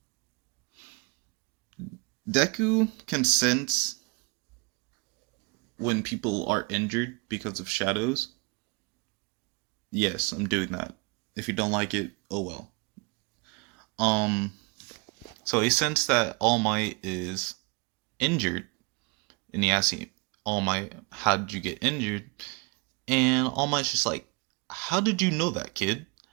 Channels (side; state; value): left; quieter; 28.9 dB